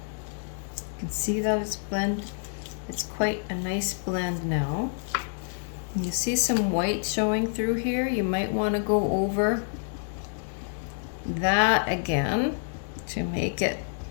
You can see that it's blend. It's quite a nice blend now. And you see some white showing through here. You might want to go over that again to make it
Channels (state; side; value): silent; right; digital silence